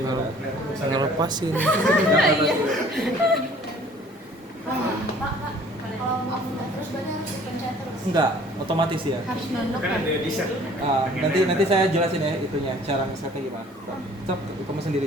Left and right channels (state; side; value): normal; both; correlation 0.53